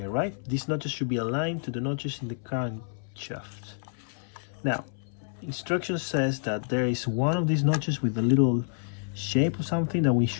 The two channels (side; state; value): right; silent; 59 dB below the other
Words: right? These notches should be aligned to the notches in the crankshaft. Now, instruction says that there is one of these notches with a little shape or something that we